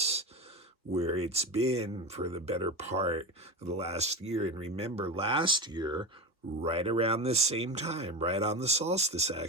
where it's been for the better part of the last year. And remember, last year, right around this same time, right on the solstice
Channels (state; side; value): normal; both; correlation 0.21